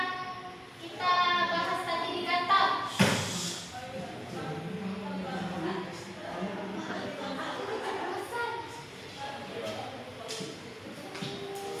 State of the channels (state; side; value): identical; both; correlation 1.00